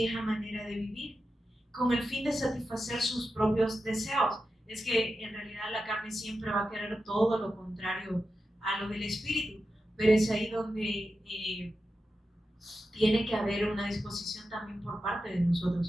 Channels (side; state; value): both; normal; correlation 0.90